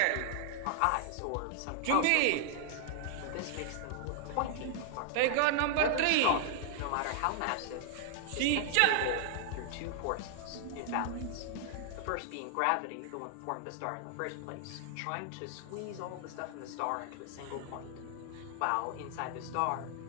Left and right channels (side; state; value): both; different; correlation -0.01